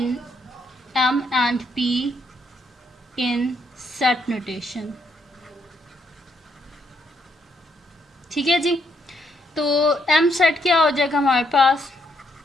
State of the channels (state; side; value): normal; both; correlation 0.74